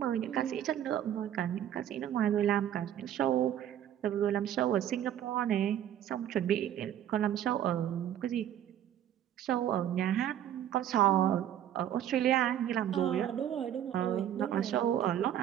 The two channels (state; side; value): quieter; left; 10.8 dB